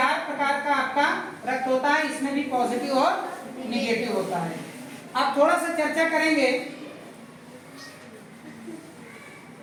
प्रकार का आपका रक्त होता है, इसमें भी पॉजिटिव और निगेटिव होता है। अब थोड़ा सा चर्चा करेंगे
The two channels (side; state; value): both; identical; correlation 1.00